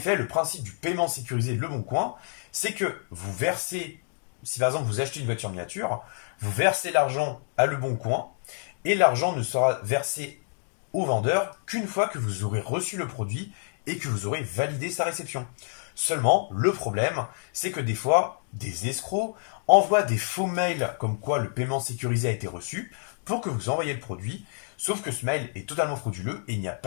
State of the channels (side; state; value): right; silent; digital silence